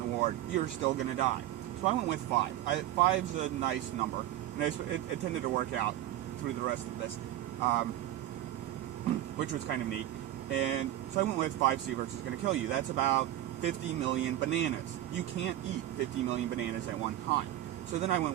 ward, you're still going to die. So I went with 5. 5's a nice number, and it tended to work out through the rest of this, which was kind of neat. And so I went with 5 sieverts is going to kill you. That's about 50 million bananas. You can't eat 50 million bananas at one time. So then I went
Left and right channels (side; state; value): left; quieter; 13.5 dB